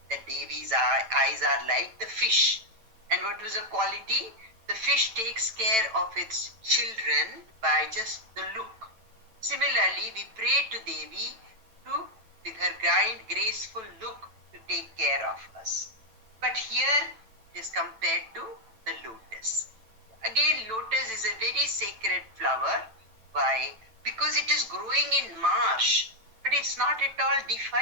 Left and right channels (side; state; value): left; late; 9.0 ms